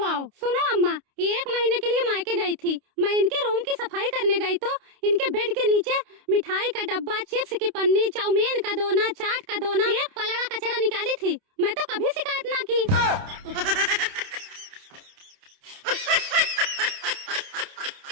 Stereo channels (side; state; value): left; late; 29 ms